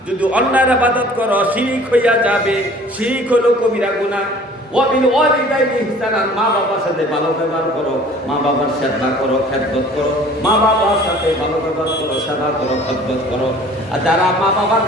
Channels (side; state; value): both; normal; correlation 0.49